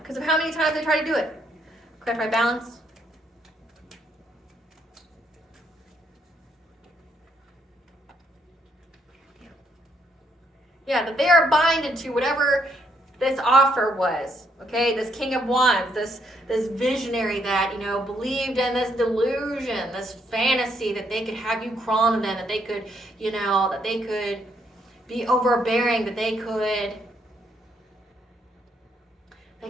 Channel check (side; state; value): both; normal; correlation 0.73